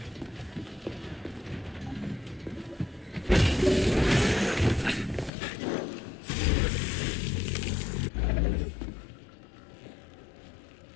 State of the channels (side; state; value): right; drops out; at 5.3 s